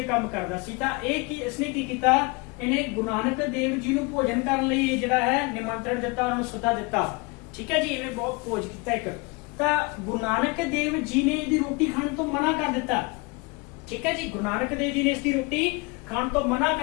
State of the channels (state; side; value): quieter; right; 28.4 dB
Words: ਕੰਮ ਕਰਦਾ ਸੀ। ਤਾਂ ਇਹ ਕੀ ਇਸਨੇ ਕੀ ਕੀਤਾ, ਇਹਨੇ ਗੁਰੂ ਨਾਨਕ ਦੇਵ ਜੀ ਨੂੰ ਭੋਜਨ ਕਰਨ ਲਈ ਜਿਹੜਾ ਹੈ ਨਿਮੰਤਰਣ ਦਿੱਤਾ, ਉਹਨਾਂ ਨੂੰ ਸੱਦਾ ਦਿੱਤਾ। ਠੀਕ ਹੈ ਜੀ, ਇਹਨੇ ਬਹੁਤ ਭੋਜ ਕੀਤਾ ਇੱਕ। ਤਾਂ ਗੁਰੂ ਨਾਨਕ ਦੇਵ ਜੀ ਨੇ ਇਹਦੀ ਰੋਟੀ ਖਾਣ ਤੋਂ ਮਨਾ ਕਰ ਦਿੱਤਾ। ਠੀਕ ਹੈ ਜੀ, ਗੁਰੂ ਨਾਨਕ ਦੇਵ ਜੀ ਨੇ ਇਸ ਦੀ ਰੋਟੀ ਖਾਣ ਤੋਂ ਮਨਾ